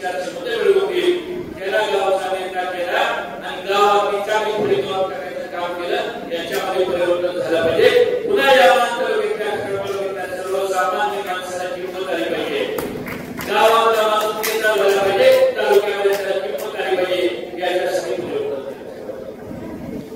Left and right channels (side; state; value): both; identical; correlation 1.00